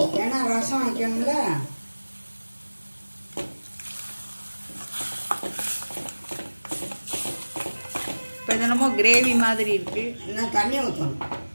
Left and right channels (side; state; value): both; inverted; correlation -1.00